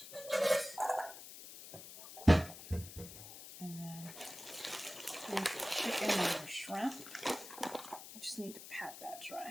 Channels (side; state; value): left; noise; hiss, 13 dB below the sound